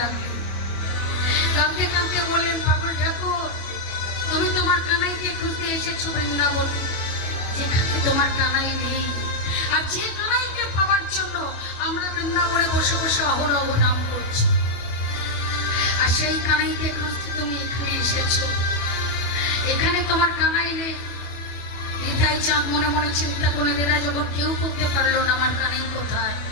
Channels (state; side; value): late; right; 24 ms